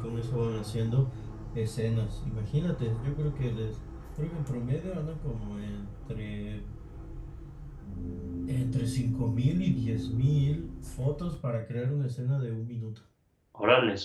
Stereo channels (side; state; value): both; identical; correlation 1.00